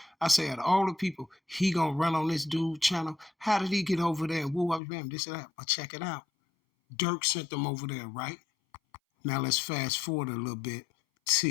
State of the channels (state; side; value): drops out; right; at 4.8 s